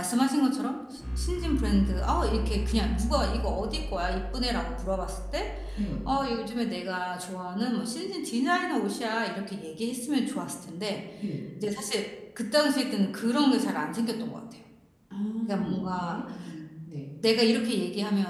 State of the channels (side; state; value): both; identical; correlation 1.00